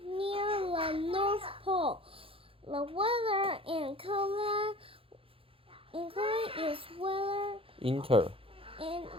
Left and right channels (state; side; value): late; left; 0.27 ms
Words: near the North Pole. The weather in Thailand is weather in